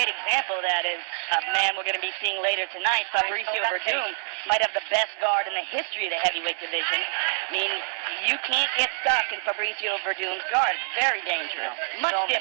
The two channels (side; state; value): left; silent; 61 dB below the other